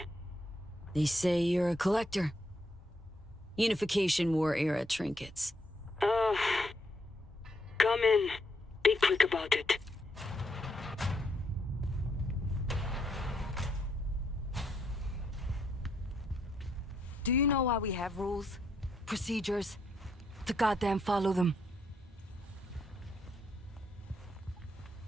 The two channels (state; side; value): normal; both; correlation 0.76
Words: They say you're a collector. Unification War era trinkets. Come in. Be quick about it. Do you know why we have rules? Procedures? To goddamn follow them.